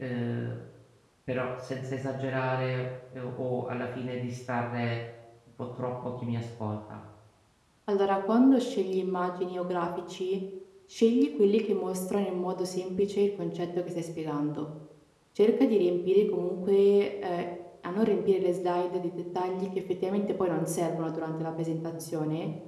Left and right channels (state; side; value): identical; both; correlation 1.00